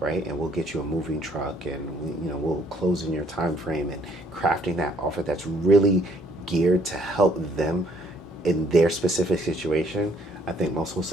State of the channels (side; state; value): both; normal; correlation 0.64